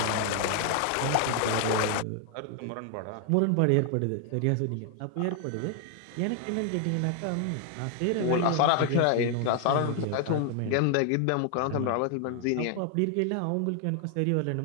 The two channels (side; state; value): both; different; correlation 0.00